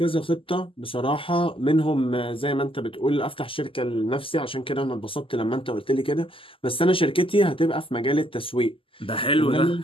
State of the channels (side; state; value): right; late; 0.25 ms